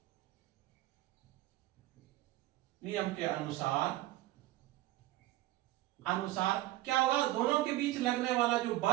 क्या होगा, दोनों के बीच लगने वाला जो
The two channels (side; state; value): left; quieter; 16.7 dB